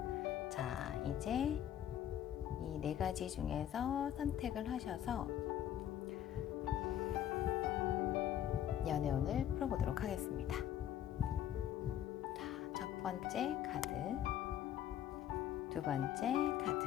자, 이제 이 네 가지 중에서 선택을 하셔서 연애운을 풀어보도록 하겠습니다. 자, 첫 번째 카드, 두 번째 카드,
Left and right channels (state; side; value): quieter; right; 10.9 dB